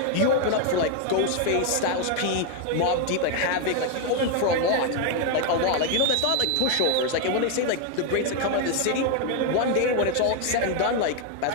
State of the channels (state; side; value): different; both; correlation 0.01